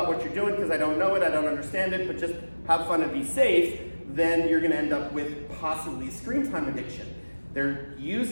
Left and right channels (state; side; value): inverted; both; correlation -1.00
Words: what you're doing because I don't know it, I don't understand it, but just have fun and be safe. Then you're going to end up with possibly screen time addiction. They're